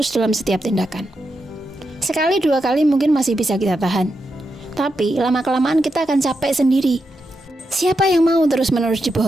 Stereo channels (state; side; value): normal; both; correlation 0.85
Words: dalam setiap tindakan. Sekali dua kali mungkin masih bisa kita tahan, tapi lama-kelamaan kita akan capek sendiri. Siapa yang mau terus-menerus